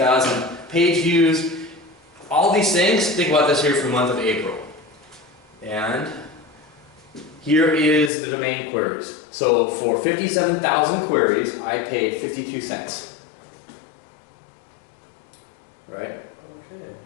page views. All these things, think about this here for the month of April. And here is the domain queries. So for 57,000 queries, I paid 52 cents. Right? Okay.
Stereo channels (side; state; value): right; drops out; at 8.1 s